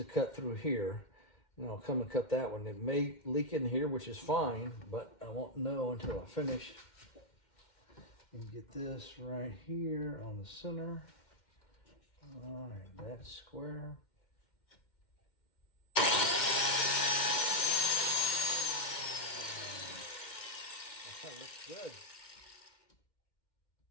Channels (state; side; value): late; right; 2.1 ms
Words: cut through here. And I'll come and cut that one. It may leak in here, which is fine, but I won't know until I finish. And get this right here on the center. All right, that's square. That looks good.